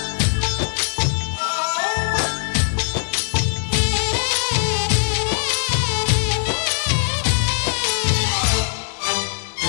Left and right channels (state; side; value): silent; right; digital silence